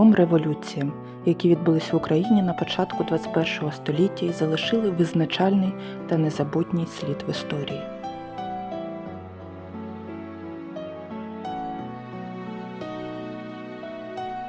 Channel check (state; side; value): identical; both; correlation 1.00